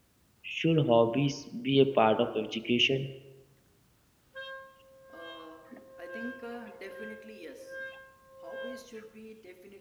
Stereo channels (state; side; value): identical; both; correlation 1.00